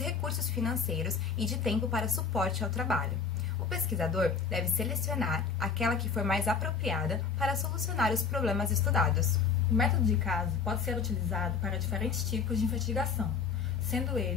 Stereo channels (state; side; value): quieter; right; 6.0 dB